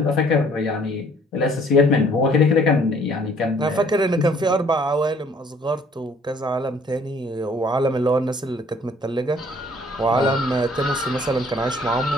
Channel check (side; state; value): both; normal; correlation 0.59